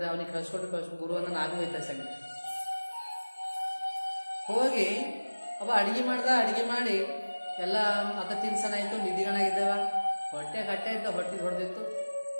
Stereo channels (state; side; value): inverted; both; correlation -1.00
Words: ಅವನಿಗೆ ಕಳ್ಸ್ಕೊಟ್ಟು ಗುರು ಅನ್ನ ನಾವೇ ಹೋಯ್ತಾ ಸಂಗ ಹೋಗಿ ಅವ ಅಡಿಗೆ ಮಾಡಿ ಎಲ್ಲ ಅದ ತಿನ್ಸನ ಆಯಿತು. ನಿಧಿಗಣಾಗಿದ್ದಾವ, ಹೊಟ್ಟೆ ಕಟ್ಟೆ ಇದ್ದ, ಹೊಟ್ಟೆ ಹೊಡೆದಿತ್ತು.